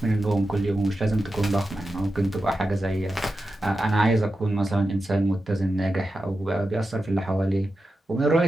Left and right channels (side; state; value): both; normal; correlation 0.91